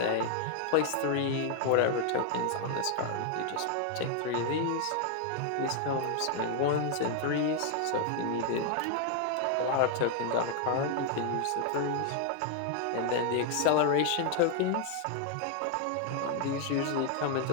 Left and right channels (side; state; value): both; different; correlation 0.00